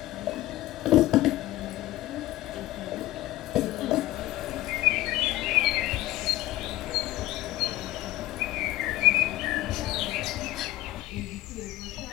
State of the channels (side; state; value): right; quieter; 16.3 dB